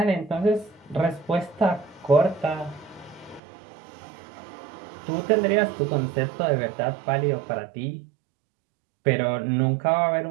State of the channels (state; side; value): drops out; left; at 3.4 s